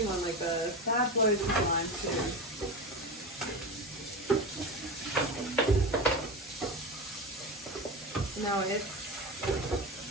one like this. That blows his mind too. No, it's.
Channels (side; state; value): both; normal; correlation 0.23